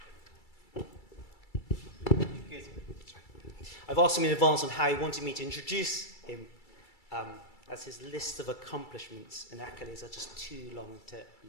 Can you hear me? Good. I've asked him in advance on how he wanted me to introduce him, as his list of accomplishments and accolades are just too long to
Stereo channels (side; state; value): right; late; 2.3 ms